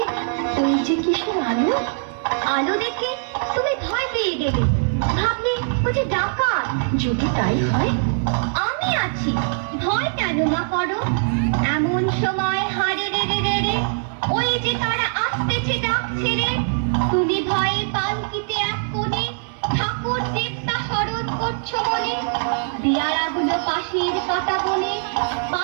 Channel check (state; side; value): silent; left; 60 dB below the other